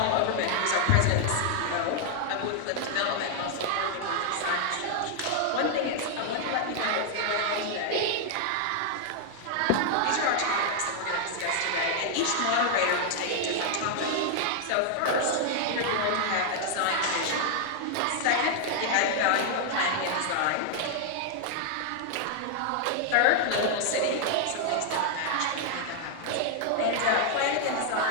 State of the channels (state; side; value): different; both; correlation 0.00